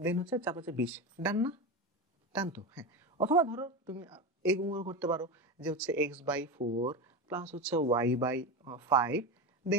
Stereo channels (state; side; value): normal; both; correlation 0.19